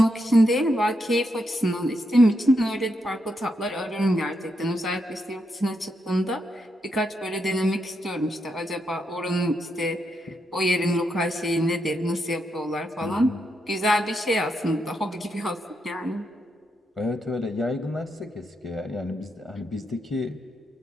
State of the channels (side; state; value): both; normal; correlation 0.82